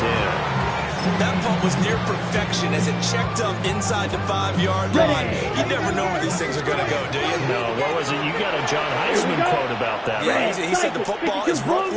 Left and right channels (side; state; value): both; identical; correlation 1.00